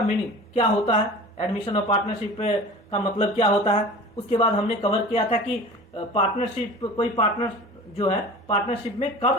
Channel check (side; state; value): both; normal; correlation 0.38